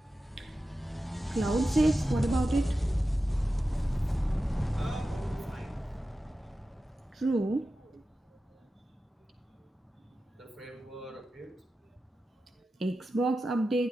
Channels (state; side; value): normal; both; correlation 0.93